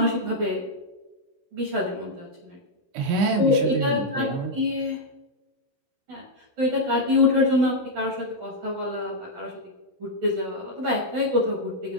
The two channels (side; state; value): left; late; 16 ms